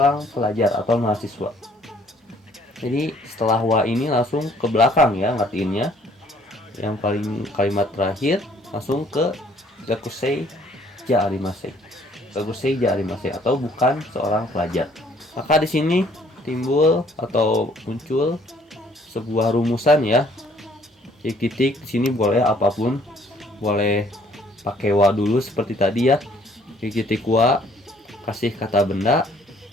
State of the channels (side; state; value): both; normal; correlation 0.61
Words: pelajar atau mahasiswa. Jadi setelah wa ini langsung ke belakang ya ngertiinnya. Yang paling kalimat terakhir langsung ke gakusei ja arimasen. Gakusei ja arimasen atau bukan seorang pelajar. Maka di sini timbul atau muncul sebuah rumusan ya. Titik-titik di sini boleh apapun, boleh pakai wa dulu seperti tadi ya. Titik wa, kasih kata benda,